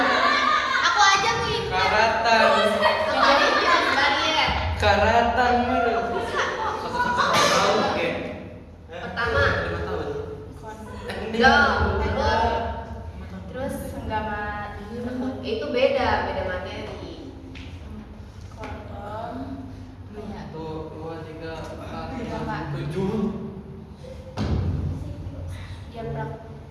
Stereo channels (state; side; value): identical; both; correlation 1.00